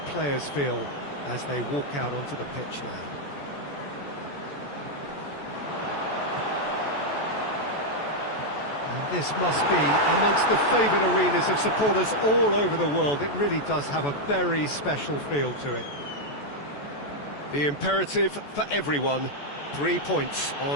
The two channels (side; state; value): right; late; 14 ms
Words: feel as they walk out onto the pitch now. And this must be amongst the favoured arenas of supporters all over the world. It really does have a very special feel to it. The imperative for everyone, 3 points